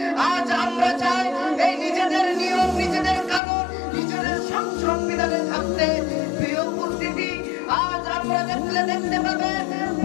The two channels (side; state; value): right; drops out; at 3.4 s